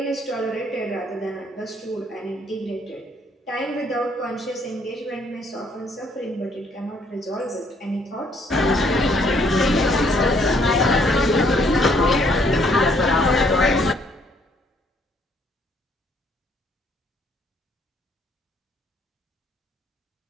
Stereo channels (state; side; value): normal; both; correlation 0.66